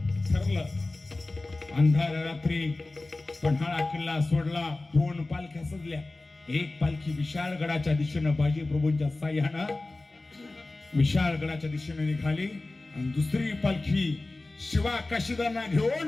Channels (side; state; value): right; quieter; 3.1 dB